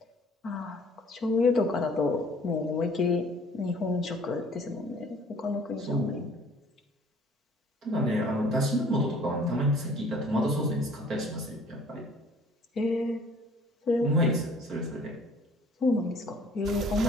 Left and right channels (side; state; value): both; normal; correlation 0.54